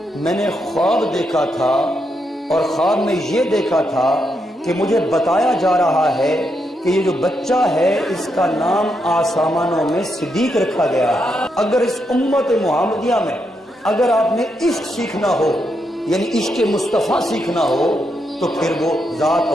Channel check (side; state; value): both; normal; correlation 0.81